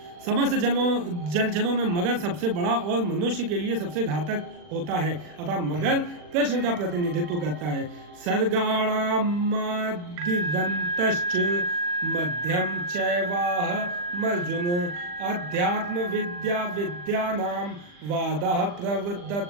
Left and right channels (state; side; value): late; left; 40 ms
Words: समस्त जलचरों में मगर सबसे बड़ा और मनुष्य के लिए सबसे घातक होता है, अतः मगर कृष्ण का प्रतिनिधित्व करता है। सर्गाणामादिदन्तश्च मध्यम चैवाहमर्जुन अध्यात्म विद्या विद्यानां वादः